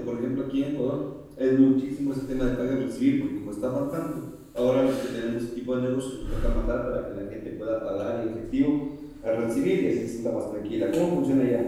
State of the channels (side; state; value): both; identical; correlation 1.00